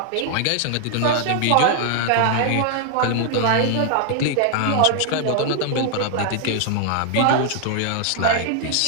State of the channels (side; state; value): both; different; correlation 0.00